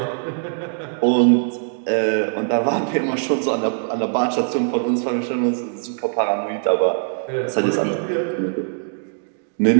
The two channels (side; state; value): left; silent; digital silence